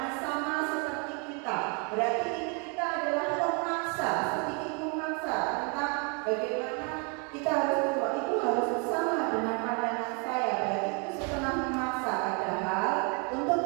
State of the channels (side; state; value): left; quieter; 35.0 dB